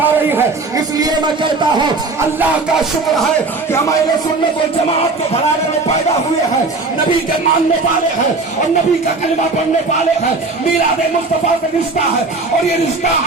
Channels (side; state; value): left; quieter; 3.7 dB